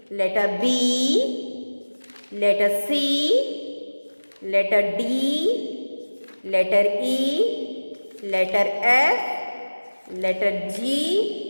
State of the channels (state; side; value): inverted; both; correlation -1.00